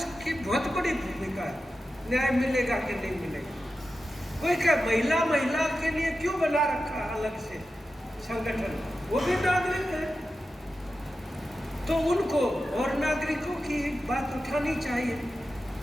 बहुत बड़ी भूमिका है। न्याय मिलेगा कि नहीं मिलेगा? कोई क्या महिला के लिए क्यों बना रखा अलग से संगठन, वो भी नागरिक है, तो उनको और नागरिकों की बात उठानी चाहिए।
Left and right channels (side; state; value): both; normal; correlation 0.92